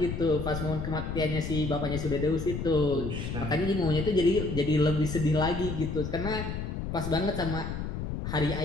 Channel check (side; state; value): left; noise; rumble, 5 dB below the sound